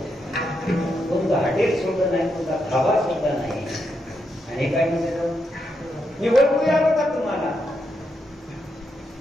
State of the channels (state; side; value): normal; both; correlation 0.82